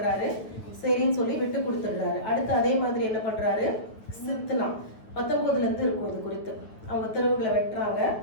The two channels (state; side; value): late; right; 9.4 ms